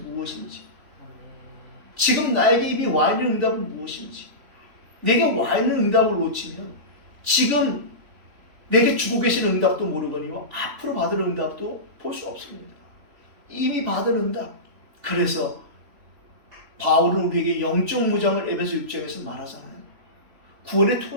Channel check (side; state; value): left; late; 3.4 ms